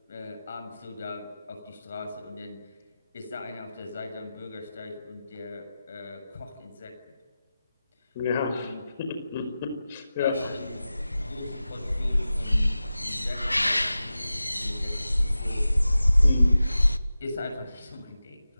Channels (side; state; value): both; inverted; correlation -0.94